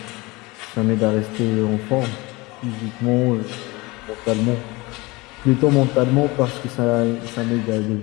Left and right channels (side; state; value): right; quieter; 23.4 dB